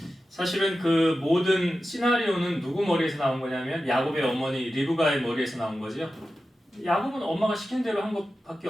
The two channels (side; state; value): both; normal; correlation 0.92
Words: 사실은 그 모든 시나리오는 누구 머리에서 나온 거냐면 야곱의 어머니 리브가의 머리에서 나온 거죠. 야곱은 엄마가 시킨 대로 한 것밖에